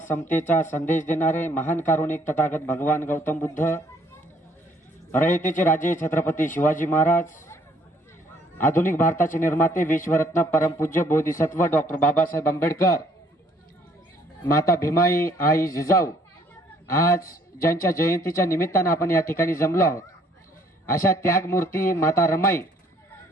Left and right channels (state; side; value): normal; both; correlation 0.63